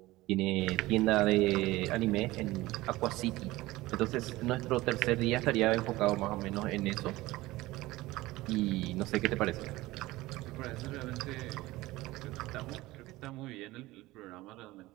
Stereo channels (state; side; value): quieter; left; 18.7 dB